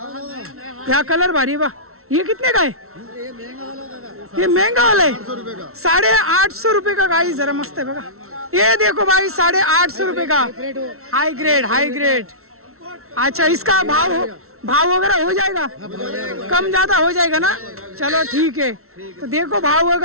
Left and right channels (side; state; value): left; late; 0.63 ms